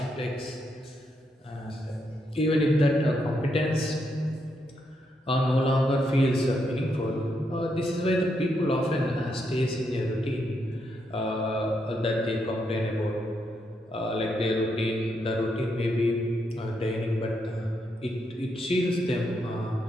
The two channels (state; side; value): normal; both; correlation 0.79